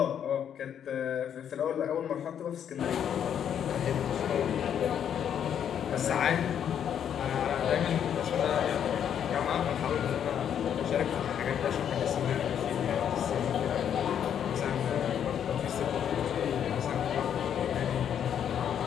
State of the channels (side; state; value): right; quieter; 9.0 dB